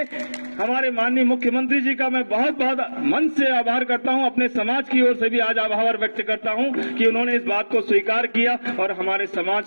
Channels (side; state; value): both; inverted; correlation -1.00